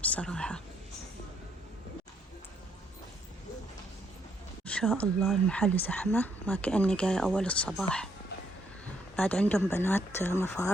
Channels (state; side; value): normal; both; correlation 0.72